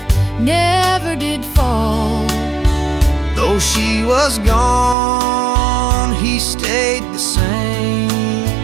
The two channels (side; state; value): left; drops out; at 5.0 s